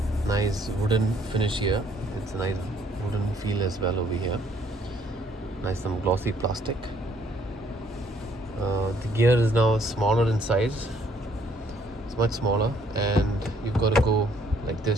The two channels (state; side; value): normal; both; correlation 0.64